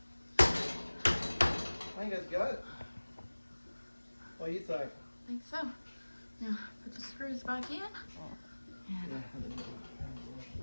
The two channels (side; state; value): both; inverted; correlation -1.00